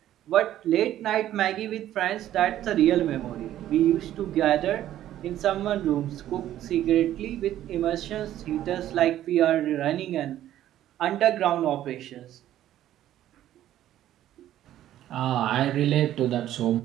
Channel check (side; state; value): left; quieter; 12.5 dB